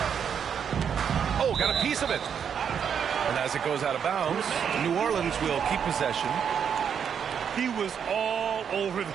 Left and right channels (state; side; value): quieter; left; 7.7 dB